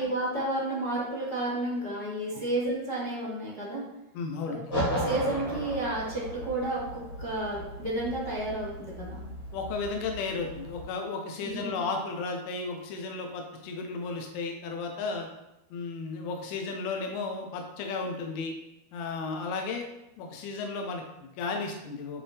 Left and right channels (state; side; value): late; right; 13 ms